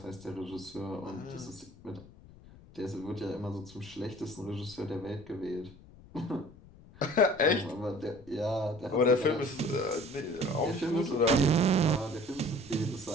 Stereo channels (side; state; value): left; noise; rumble, 21 dB below the sound